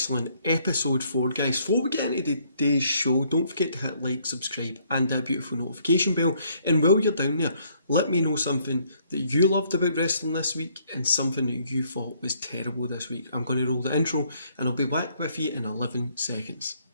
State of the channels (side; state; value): both; inverted; correlation -0.67